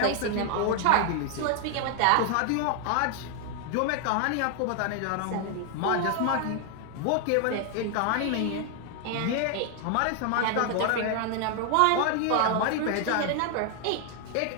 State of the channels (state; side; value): different; both; correlation 0.00